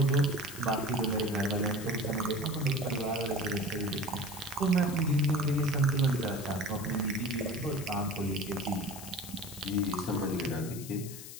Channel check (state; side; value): noise; left; hiss, 12 dB below the sound